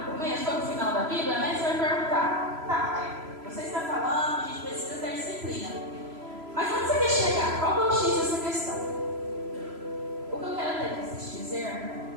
começo, foi para o final da Bíblia, né? Você vai perguntar: tá, você está falando que a gente precisa ter disciplina. Mas onde você quer chegar? Qual é o X dessa questão? O que eu quero te dizer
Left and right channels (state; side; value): late; left; 3.0 ms